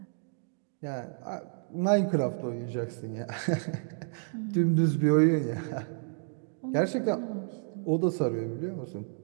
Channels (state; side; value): silent; left; digital silence